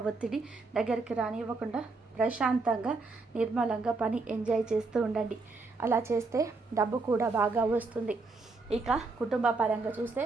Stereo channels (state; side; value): quieter; left; 3.7 dB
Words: ఒత్తిడి దగ్గరికి రానివ్వకుండా ప్రశాంతంగా, నిర్మలంగా పని ఎంజాయ్ చేస్తూ ఉండండి. అలా చేస్తే డబ్బు కూడా బాగా వస్తుంది. ఇక కుటుంబ పరంగా చూస్తే